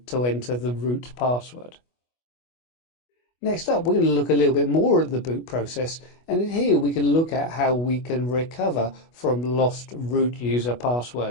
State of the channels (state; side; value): late; right; 25 ms